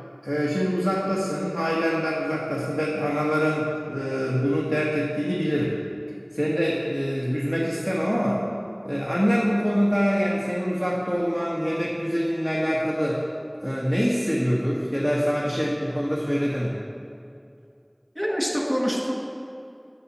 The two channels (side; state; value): both; identical; correlation 1.00